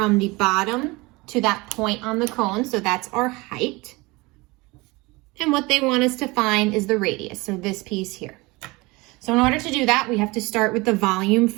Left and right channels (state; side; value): quieter; left; 23.6 dB